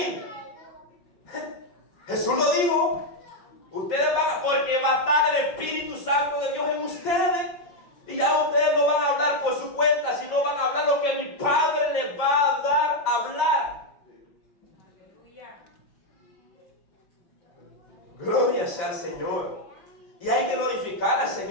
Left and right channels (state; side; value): late; right; 5.2 ms